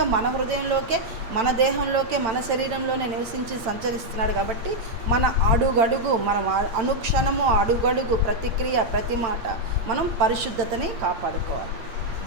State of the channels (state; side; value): late; left; 8.9 ms